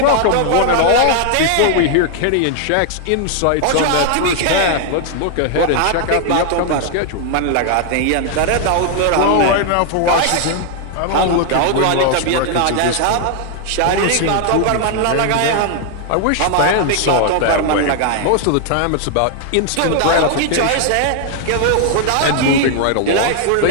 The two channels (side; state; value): both; different; correlation 0.00